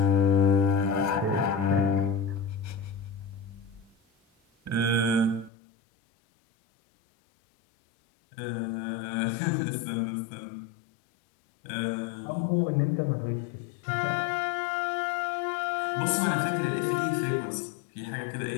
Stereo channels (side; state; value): right; drops out; at 5.5 s